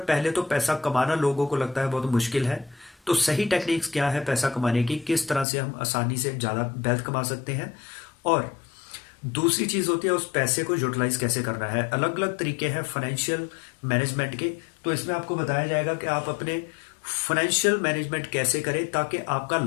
पहले तो पैसा कमाना लोगों को लगता है बहुत मुश्किल है। तो सही टेक्निक्स क्या है पैसा कमाने की, किस तरह से हम आसानी से ज़्यादा वेल्थ कमा सकते हैं, और दूसरी चीज़ होती है उस पैसे को यूटिलाइज कैसे करना है। अलग अलग तरीके हैं फाइनेंशियल मैनेजमेंट के। तो इसमें आपको बताया जाएगा कि आप अपने फाइनेंशियल मैनेजमेंट कैसे करें ताकि आपका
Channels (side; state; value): right; drops out; at 5.5 s